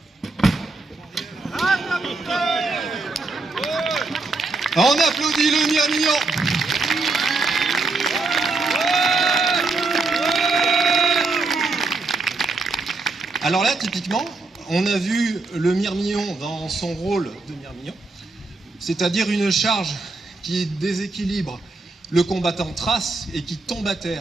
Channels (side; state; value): left; quieter; 3.6 dB